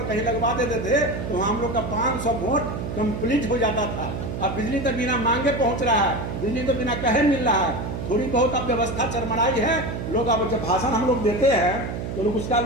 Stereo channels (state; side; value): noise; right; hum, 5 dB below the sound